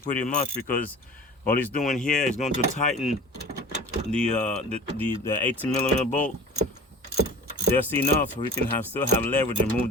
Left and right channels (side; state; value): both; normal; correlation 0.39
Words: much, because all he's doing here is going to tighten the 18 millimeter bolt just enough so we can still have leverage and move